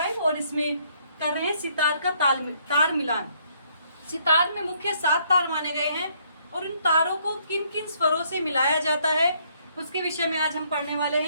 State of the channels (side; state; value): both; inverted; correlation -0.68